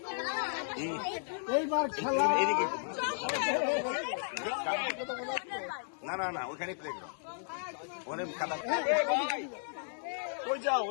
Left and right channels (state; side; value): silent; right; digital silence